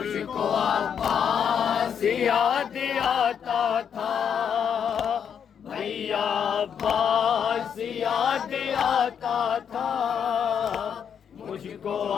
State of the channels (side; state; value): right; quieter; 7.8 dB